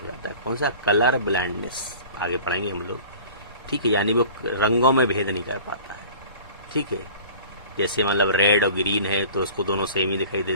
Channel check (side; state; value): both; inverted; correlation -0.44